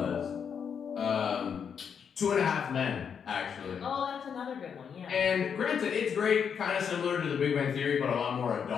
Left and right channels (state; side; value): quieter; right; 7.2 dB